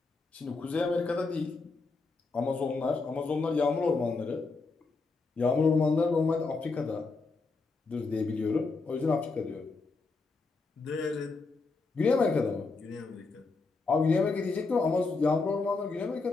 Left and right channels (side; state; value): right; quieter; 4.0 dB